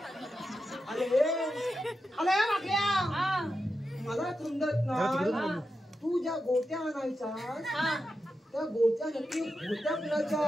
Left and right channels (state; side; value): normal; both; correlation 0.89